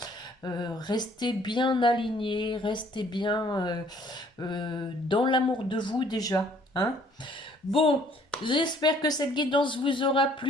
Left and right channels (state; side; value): normal; both; correlation 0.60